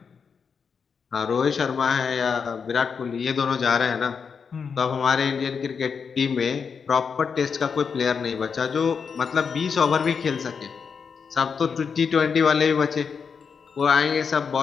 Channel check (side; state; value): right; quieter; 6.0 dB